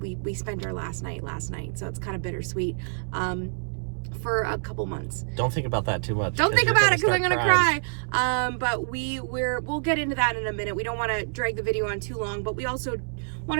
spent our last night, so it's kind of bittersweet. For a couple months. Don't think about that too much. Don't think about it because I'm gonna cry. But we'll get into that in a minute. We don't want to drag the video on too long, but we also want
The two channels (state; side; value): silent; left; 60 dB below the other